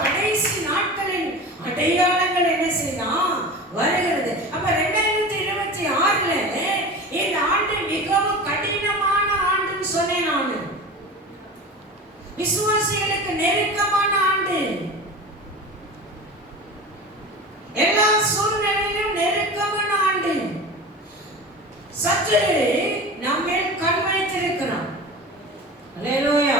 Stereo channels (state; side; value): normal; both; correlation 0.33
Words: கடைசி நாட்களின் அடையாளங்கள் என்ன செய்யலாம்? வருகிறது. அப்ப 2026ல இந்த ஆண்டு மிகவும் கடினமான ஆண்டுன்னு சொன்னேன் நான். விசுவாசிகளுக்கு நெருக்கமான ஆண்டு. எல்லா சூழ்நிலையிலும் கர்த்தர் நம்மேல் கண் வைத்திருக்கிறார். அல்லேலூயா,